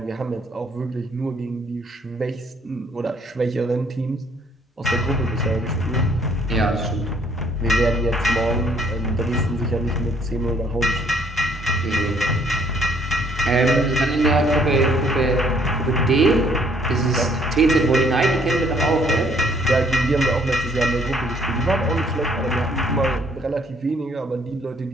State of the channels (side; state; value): both; normal; correlation 0.63